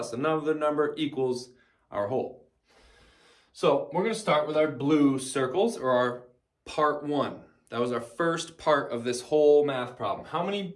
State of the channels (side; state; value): both; identical; correlation 1.00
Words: another number equals our whole. So we're going to start with our blue circles, or our part 1. That was our first part of this whole math problem. How